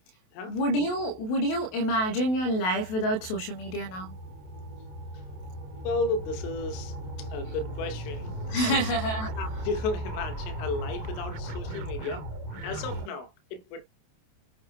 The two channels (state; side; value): late; right; 28 ms